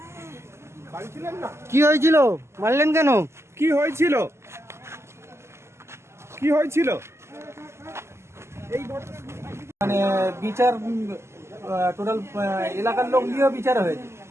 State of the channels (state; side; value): late; left; 0.13 ms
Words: বাড়ি ছিলেন না? কি হয়েছিল? মারলেন কেন? কি হয়েছিল? কি হয়েছিল? এই মানে বিচার টোটাল এলাকার লোক দিয়েও বিচার হয়েছে,